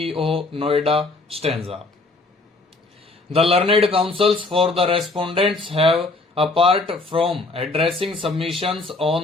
Noida Stanza. The learned counsels for the respondents have, apart from addressing submissions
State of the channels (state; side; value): quieter; right; 3.3 dB